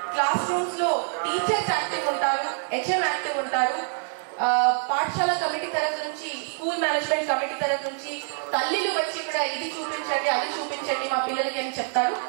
క్లాస్ రూమ్స్ లో టీచర్స్ యాక్టివ్ ఉంటారు, హెచ్ఎం యాక్టివ్ ఉంటారు, పాఠశాల కమిటీ తరఫు నుంచి, స్కూల్ మేనేజ్మెంట్ కమిటీ తరఫు నుంచి తల్లిలు వచ్చి ఇక్కడ ఇది చూపించండి అది చూపించండి మా పిల్లలకి అని చెప్తారు.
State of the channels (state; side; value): silent; left; 61 dB below the other